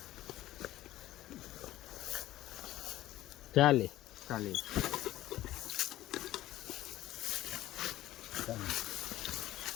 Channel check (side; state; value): right; quieter; 15.0 dB